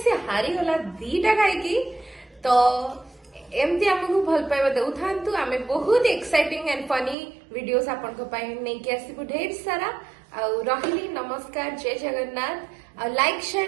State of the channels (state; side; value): drops out; left; at 7.2 s